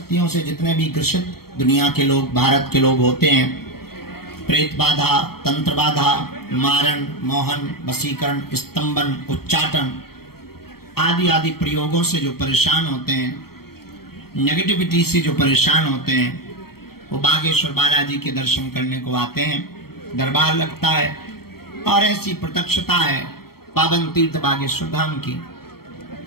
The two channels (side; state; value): right; late; 0.95 ms